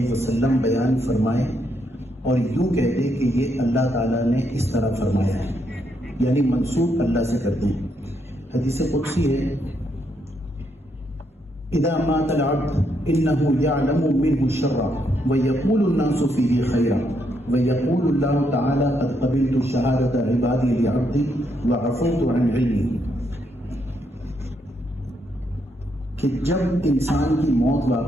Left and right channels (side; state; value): both; normal; correlation 0.77